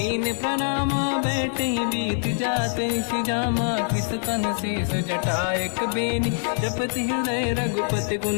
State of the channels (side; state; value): right; silent; digital silence